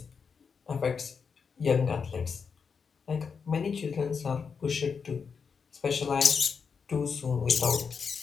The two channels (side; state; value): right; quieter; 5.8 dB